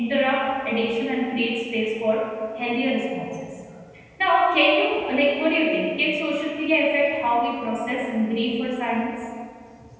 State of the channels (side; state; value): both; identical; correlation 1.00